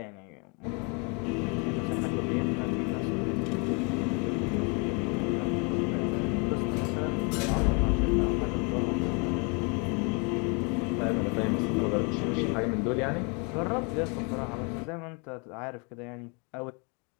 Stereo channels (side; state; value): right; quieter; 33.4 dB